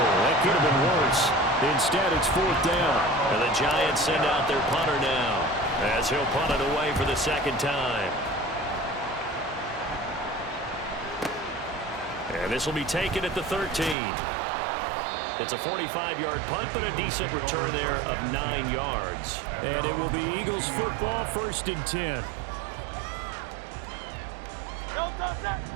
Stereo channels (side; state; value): left; drops out; at 14.0 s